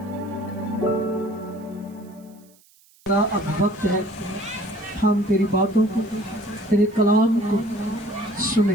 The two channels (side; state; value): right; noise; hiss, 30 dB below the sound